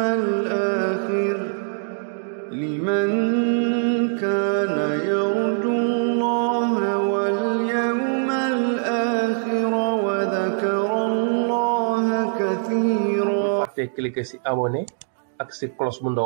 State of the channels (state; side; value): silent; left; digital silence